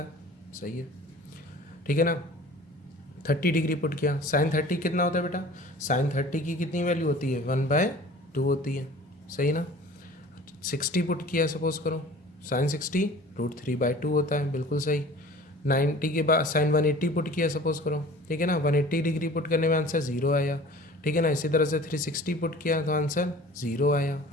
है, सही है, ठीक है ना। 30 डिग्री पुट किया, साइन 30 कितना होता है बेटा, साइन 30 की कितनी वैल्यू होती है, 1/2 होती है, सही ना। 60 पुट किया सपोज करो, साइन 60 √3/2 होता है, बिल्कुल सही। 90 के बाद साइन 180 पुट किया सपोज करो, ठीक है ना। 180 डिग्री पुट करने में आंसर 0 आया, ठीक है ना। इसी तरह से 360 पुट किया तो आंसर 0 आया,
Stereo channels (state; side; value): normal; both; correlation 0.44